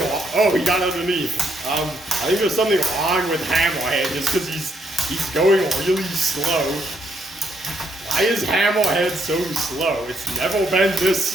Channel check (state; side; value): normal; both; correlation 0.74